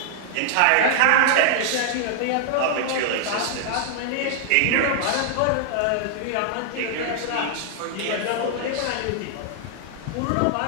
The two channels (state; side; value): different; both; correlation 0.00